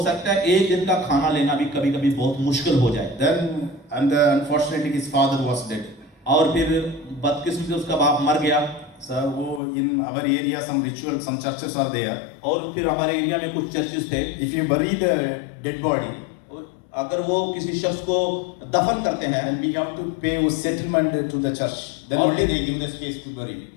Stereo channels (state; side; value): drops out; right; at 9.6 s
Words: सकता है एक दिन का खाना लेना भी कभी-कभी बहुत मुश्किल हो जाए। Then unfortunately his father was dead. और फिर बदकिस्मती से उसका बाप मर गया। So in our area some rituals, some churches are there. और फिर हमारे एरिया में कुछ चर्चेस थे। If you bury the dead body, अगर वो किसी शख्स को दफन करते हैं and we have to pay a settlement to the church, then only they give the space to bury.